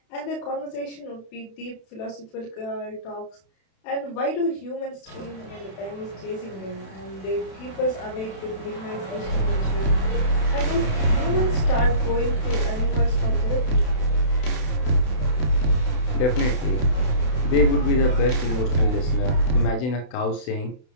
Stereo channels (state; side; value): late; right; 32 ms